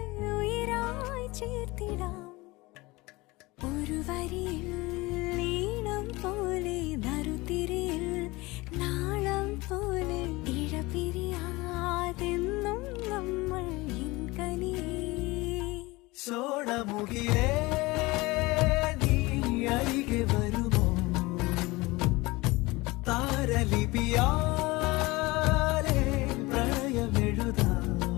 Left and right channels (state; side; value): quieter; right; 22.2 dB